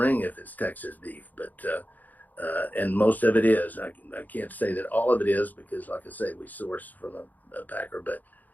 if it's Texas beef, but, and most of it is. I can't say that all of it is, because, like I say, we source from a packer. But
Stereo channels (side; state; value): right; late; 0.082 ms